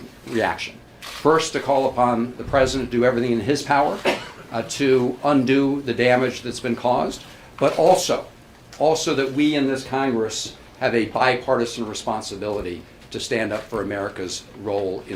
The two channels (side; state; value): both; identical; correlation 1.00